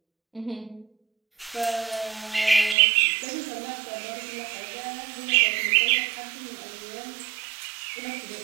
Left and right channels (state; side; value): drops out; left; at 2.8 s